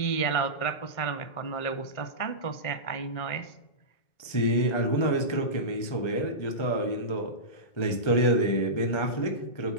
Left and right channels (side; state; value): right; late; 1.4 ms